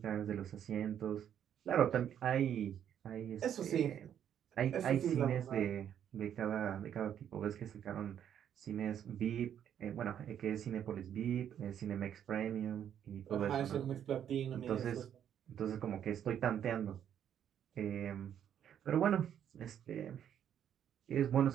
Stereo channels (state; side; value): quieter; left; 9.5 dB